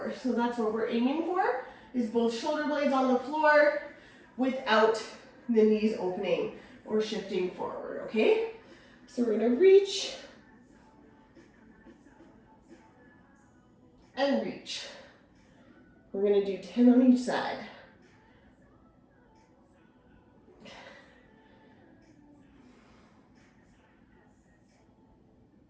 So that's what we're aiming for, is both shoulder blades on the floor without the knees opening or shifting forward, okay? So we're gonna reach and reach. We're gonna do 10 on each side.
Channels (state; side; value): identical; both; correlation 1.00